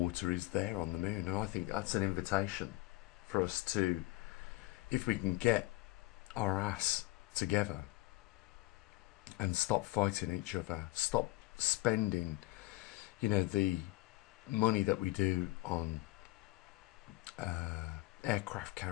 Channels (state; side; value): quieter; right; 19.7 dB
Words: is there on the moon, and I think that's an invitation for us to, if we can get our ass together and stop fighting each other, stop spending the money that we do on aircraft